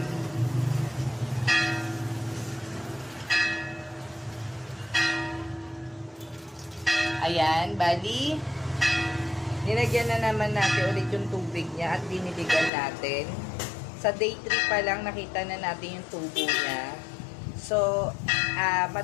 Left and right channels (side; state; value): right; drops out; at 12.7 s